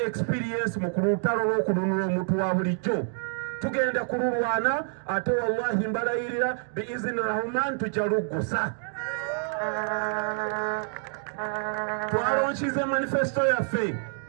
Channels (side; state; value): left; silent; 60 dB below the other